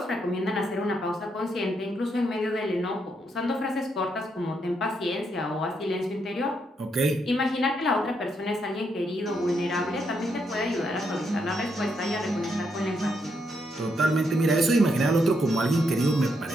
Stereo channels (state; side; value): normal; both; correlation 0.78